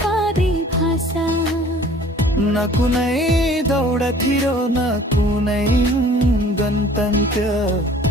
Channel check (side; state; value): both; normal; correlation 0.51